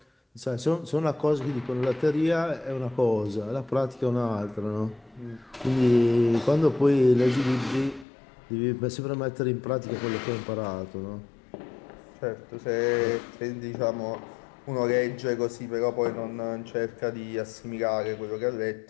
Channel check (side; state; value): right; drops out; at 8.1 s